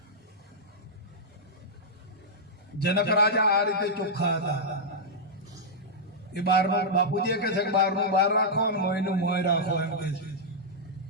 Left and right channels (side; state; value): both; normal; correlation -0.08